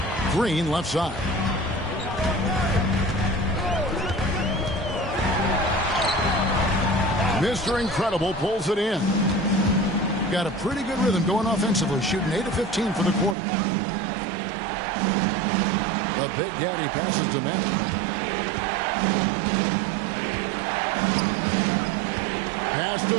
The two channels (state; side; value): drops out; left; at 13.4 s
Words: Green left side. Mr. Incredible pulls it in. Got a pretty good rhythm going offensively, shooting 8 of 15 for the quarter. The Big Daddy passes to Maverick. Pass to